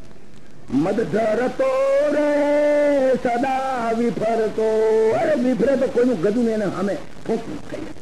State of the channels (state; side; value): identical; both; correlation 1.00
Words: મદ ધરતો રે સદા વિફરતો, અરે વિફરે તો કોઈનું ગજું ને એને સામે ફૂંક થઈ.